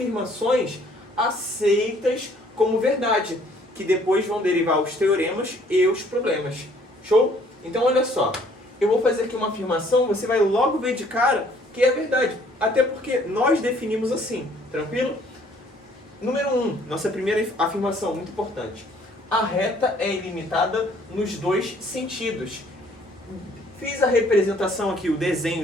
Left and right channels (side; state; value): both; normal; correlation 0.60